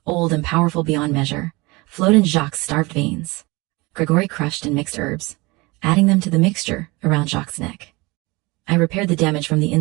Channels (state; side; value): quieter; left; 24.2 dB